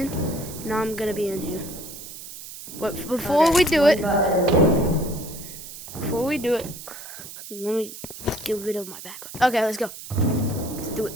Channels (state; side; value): noise; right; hiss, 13 dB below the sound